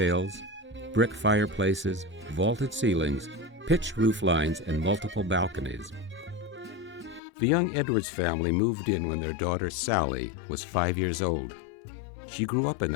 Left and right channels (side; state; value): right; drops out; at 7.2 s